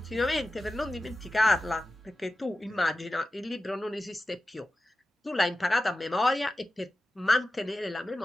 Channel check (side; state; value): both; normal; correlation 0.93